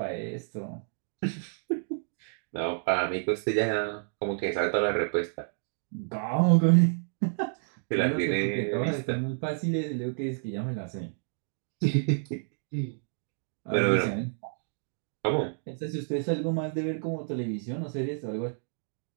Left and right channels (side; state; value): left; silent; digital silence